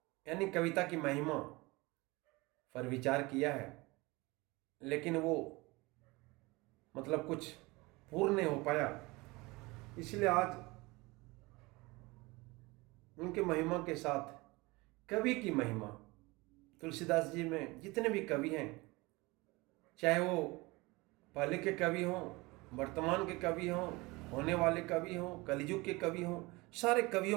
यानी कविता की महिमा पर विचार किया है, लेकिन वो कुछ पूर्ण नहीं हो पाया। इसलिए आज उनके महिमा के साथ कवि की महिमा, तुलसीदास जी में जितने भी कवि हैं, चाहे वो पहले के कवि हों, वर्तमान के कवि हों, होने वाले कवि हों, कलियुग के कवि हों, सारे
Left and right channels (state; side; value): quieter; left; 23.4 dB